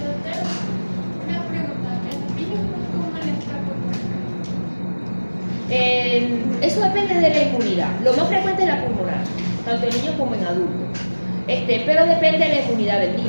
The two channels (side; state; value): both; inverted; correlation -1.00